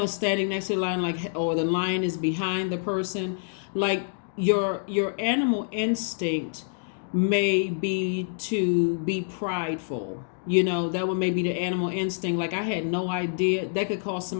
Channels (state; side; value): silent; right; digital silence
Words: standing next to the lion, like, or the lion is behind the person. Like your animal instinct may be to be prideful. That would maybe the animal instinct. Like, I had no idea. That could cause